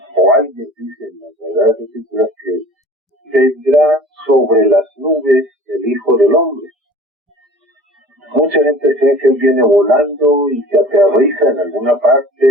o alguien dice en las Sagradas Escrituras que vendrá sobre las nubes el Hijo del Hombre. Mucha gente cree que él viene volando y que aterriza en alguna parte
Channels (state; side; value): normal; both; correlation 0.44